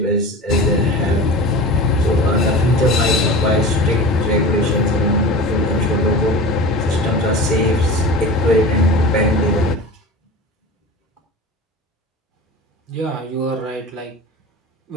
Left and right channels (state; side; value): normal; both; correlation 0.33